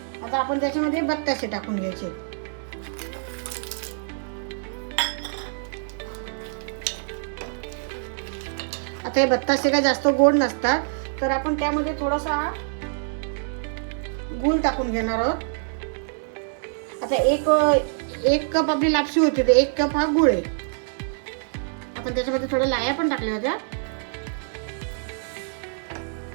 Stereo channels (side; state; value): left; silent; digital silence